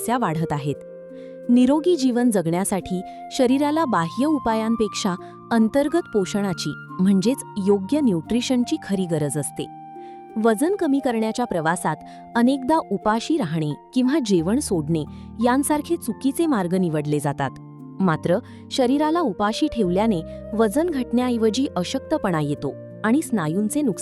वाढत आहेत. निरोगी जीवन जगण्यासाठी शरीराला बाह्य उपायांपेक्षा अंतर्गत पोषणाची म्हणजेच योग्य न्यूट्रिशनची खरी गरज असते. वजन कमी करण्याच्या प्रवासात अनेकदा उपाशी राहणे किंवा जेवण सोडणे यांसारखे चुकीचे मार्ग निवडले जातात. मात्र शरीराला उपाशी ठेवल्याने वजन घटण्याऐवजी अशक्तपणा येतो आणि स्नायूंचे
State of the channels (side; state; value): both; identical; correlation 1.00